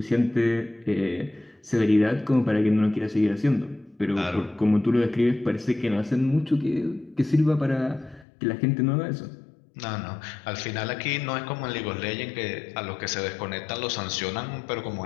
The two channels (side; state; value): right; drops out; at 8.2 s